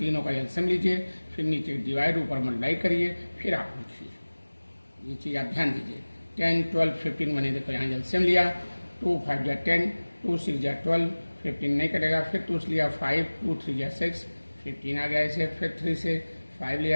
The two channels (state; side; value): inverted; both; correlation -1.00